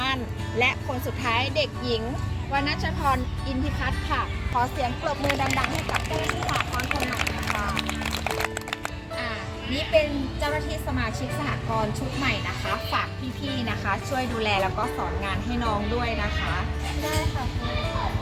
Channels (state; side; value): identical; both; correlation 1.00